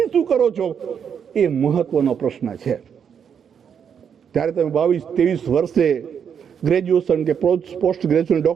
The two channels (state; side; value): quieter; left; 7.6 dB